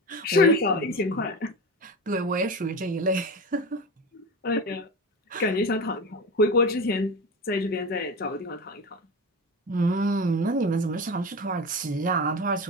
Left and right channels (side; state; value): both; normal; correlation 0.26